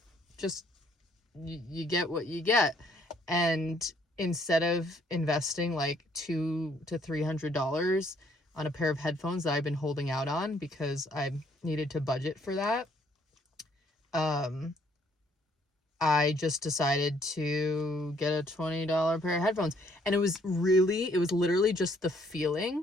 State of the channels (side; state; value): both; normal; correlation 0.65